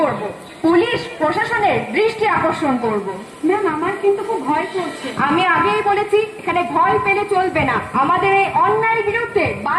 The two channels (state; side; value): identical; both; correlation 1.00